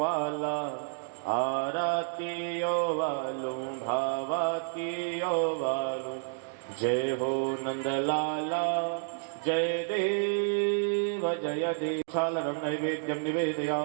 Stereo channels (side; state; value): left; silent; digital silence